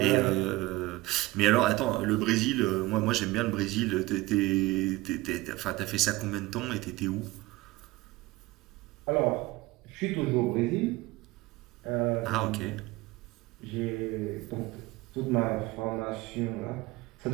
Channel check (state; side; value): quieter; left; 19.9 dB